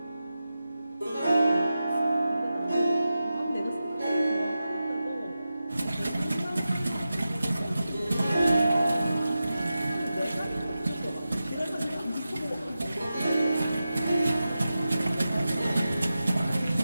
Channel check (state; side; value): inverted; both; correlation -0.92